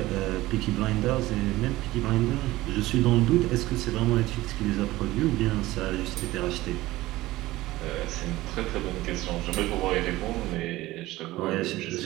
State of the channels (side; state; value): left; quieter; 17.6 dB